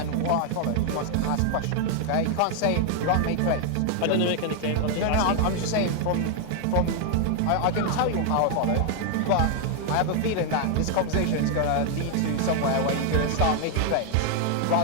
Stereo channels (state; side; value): different; both; correlation 0.00